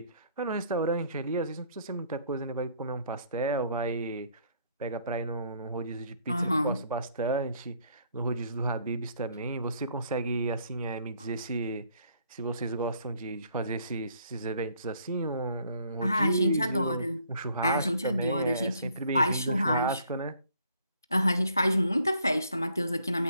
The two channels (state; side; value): inverted; both; correlation -0.64